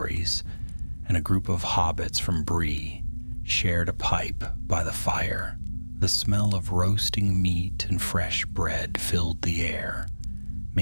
and a group of hobbits from Bree shared a pipe by the fire. The smell of roasting meat and fresh bread filled the air,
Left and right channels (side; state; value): both; inverted; correlation -1.00